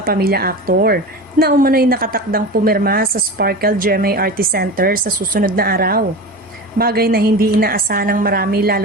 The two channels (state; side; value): normal; both; correlation 0.29